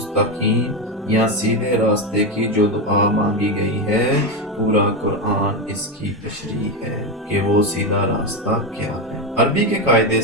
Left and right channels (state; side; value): normal; both; correlation 0.12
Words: या सीधे रास्ते की जो दुआ मांगी गई है, पूरा कुरान इसकी तशरीह है कि वो सीधा रास्ता क्या है। अरबी के कायदे